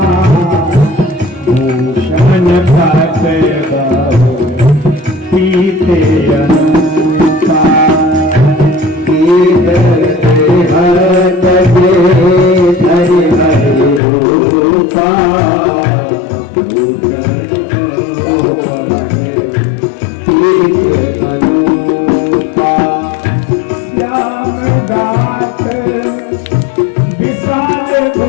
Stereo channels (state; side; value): drops out; right; at 14.0 s